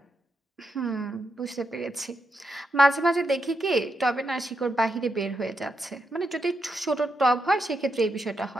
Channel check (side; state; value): both; normal; correlation 0.83